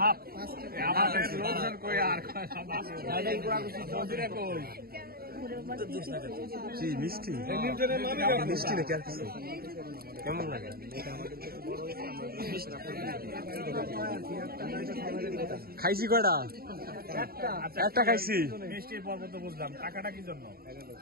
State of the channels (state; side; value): late; left; 0.44 ms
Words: হাফ লোকজন কই আর মিষ্টি মিষ্টি নাকি আর কিছু কেমন লাগে খাইছি কয়টা একটা খাইছি মিষ্টির পর্ব তো বুঝলাম টাকাটা কি জন্য